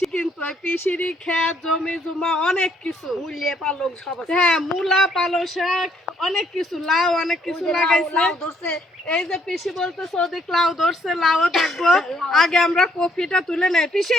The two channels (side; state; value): both; normal; correlation 0.68